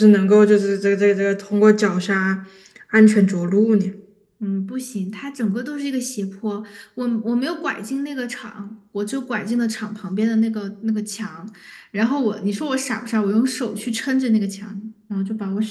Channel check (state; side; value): identical; both; correlation 1.00